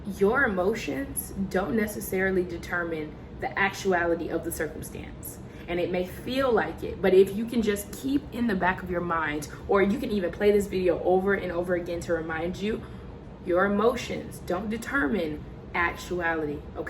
your emotions don't necessarily determine the actuality of the circumstance. And it may feel like it, but if you can just keep in the back of your mind, or you can even play this video over and over again to remind you, your emotions don't determine actuality,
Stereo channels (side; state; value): both; identical; correlation 1.00